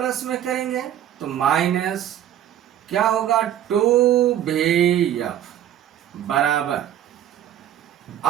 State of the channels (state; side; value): quieter; left; 11.1 dB